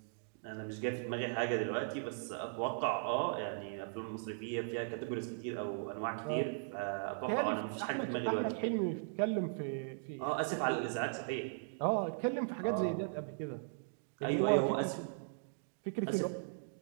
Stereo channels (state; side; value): silent; left; digital silence